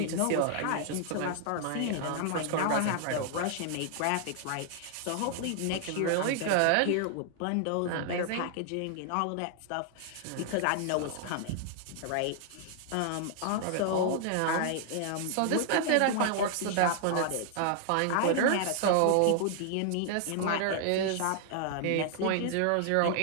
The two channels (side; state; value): both; different; correlation 0.00